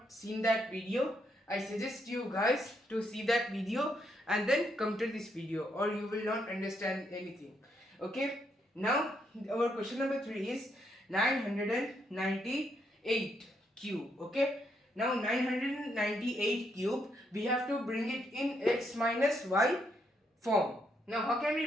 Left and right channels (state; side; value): normal; both; correlation 0.76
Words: seen that video, I suggest you guys to see that video and then come to this video, or you will not understand anything. Okay, now our question number 3 is 998 cube. Okay, now 998 cube, we have to bring it in x minus y form. Now how can